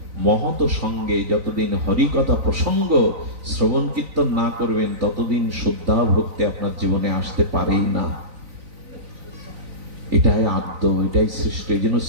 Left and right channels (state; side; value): late; left; 3.9 ms